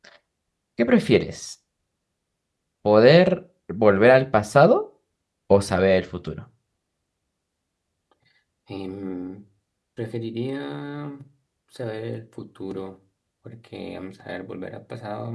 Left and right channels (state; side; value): identical; both; correlation 1.00